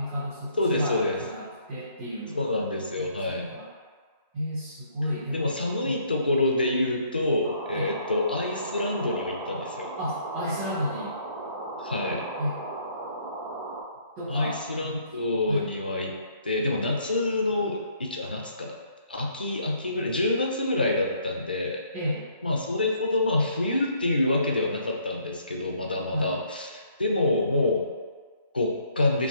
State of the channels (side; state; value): both; inverted; correlation -0.65